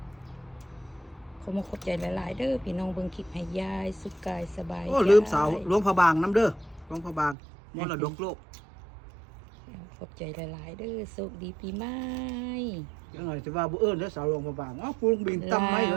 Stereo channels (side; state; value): left; drops out; at 7.4 s